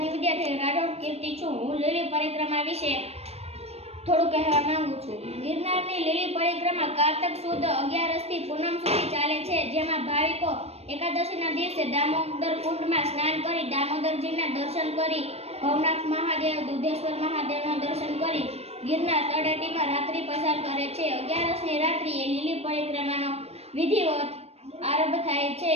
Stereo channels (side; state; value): left; late; 0.30 ms